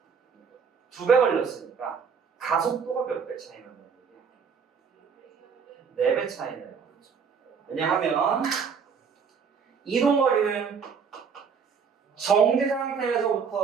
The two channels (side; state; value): left; quieter; 6.2 dB